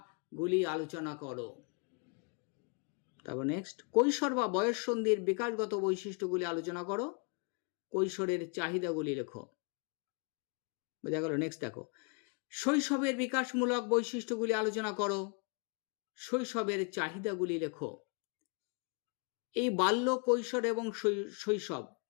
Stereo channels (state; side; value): quieter; right; 34.3 dB